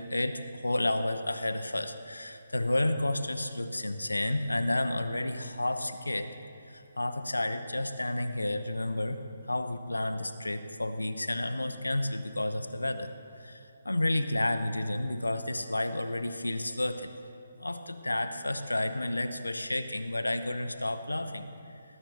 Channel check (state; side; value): inverted; both; correlation -0.96